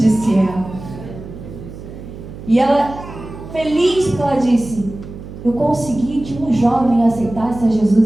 ela. E ela, feliz, porque ela disse: eu consegui que um jovem aceitasse a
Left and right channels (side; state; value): right; noise; hum, 13 dB below the sound